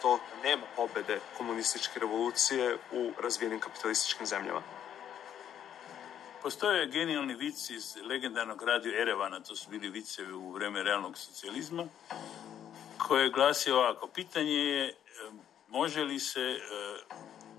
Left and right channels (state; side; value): quieter; right; 9.8 dB